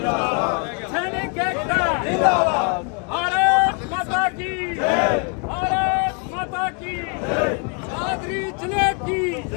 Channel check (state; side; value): quieter; right; 36.2 dB